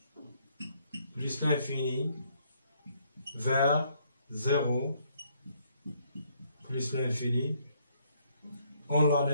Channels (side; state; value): both; inverted; correlation -0.69